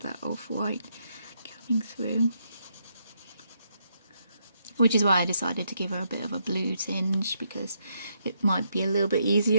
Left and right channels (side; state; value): both; inverted; correlation -0.77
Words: that off-white coming through. Which is why I decided to give her a bit of a blue tinge, because it might be a little bit